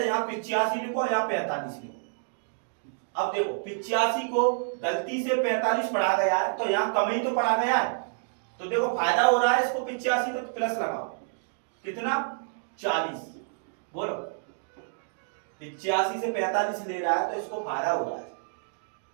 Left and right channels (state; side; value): silent; left; digital silence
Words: यहाँ 85 लिखो, यहाँ 45 लिखो। अब देखो 85 को गलती से 45 पढ़ा गया है, तो यहाँ कम ही तो पढ़ा गया है, तो देखो फायदा हो रहा है इसको 85, तो प्लस लगाओ। कितना? 40। बोलो 85 से 45 ले रहा है तो इसको फायदा हो रहा है,